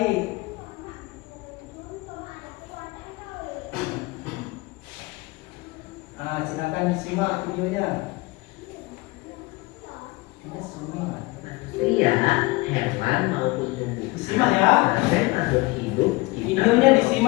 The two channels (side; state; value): right; quieter; 22.9 dB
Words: Nah, silakan disimak videonya. Ini semua. Manusia, hewan maupun tumbuhan Disimak ya. dan makhluk hidup Videonya